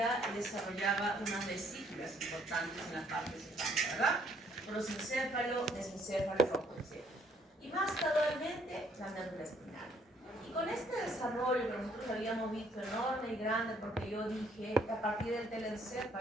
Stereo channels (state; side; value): normal; both; correlation 0.66